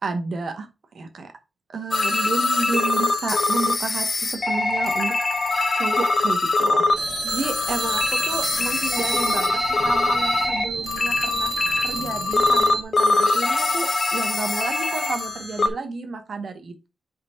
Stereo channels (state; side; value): normal; both; correlation 0.90